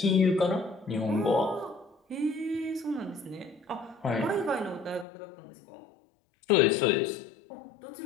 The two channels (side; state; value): right; drops out; at 5.1 s